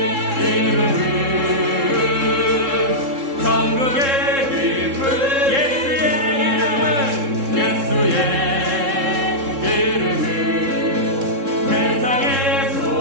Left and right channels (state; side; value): late; left; 3.7 ms